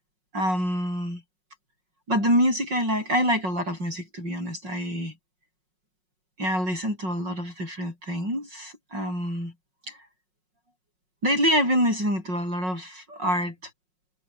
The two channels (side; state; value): left; late; 5.5 ms